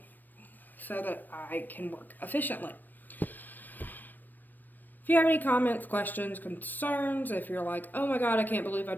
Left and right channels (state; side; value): late; right; 0.090 ms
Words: so that I can work efficiently. If you have any comments, questions, concerns, if you're like, oh my god, I can't believe I